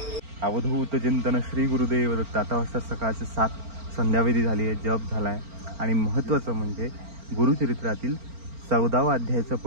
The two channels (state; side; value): late; left; 4.4 ms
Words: अवधूत चिंतन श्री गुरुदेव दत्त. आता वाजता सकाळचे 7 संध्यावेदी झाली आहे, जप झाला आहे. आणि महत्त्वाचं म्हणजे गुरुचरित्रातील 14वा अध्यायाचं